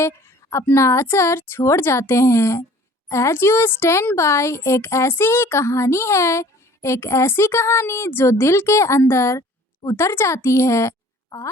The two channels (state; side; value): normal; both; correlation 0.51